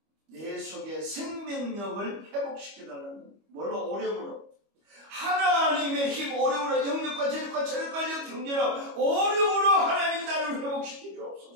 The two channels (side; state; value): left; late; 25 ms